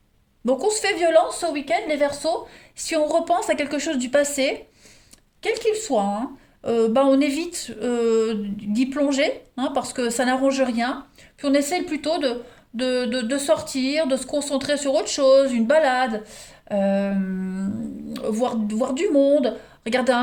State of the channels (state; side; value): identical; both; correlation 1.00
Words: Donc on se fait violence ce week-end, les Verseaux. Si on repense à quelque chose du passé, quel qu'il soit, hein, bah on évite d'y plonger, hein, parce que ça n'arrange rien. Puis on essaye plutôt de sortir, de se concentrer sur autre chose, une balade, euh, voir du monde, regarder